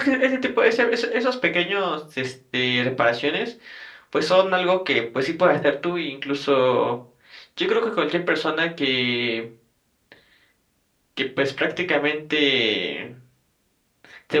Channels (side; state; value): both; identical; correlation 1.00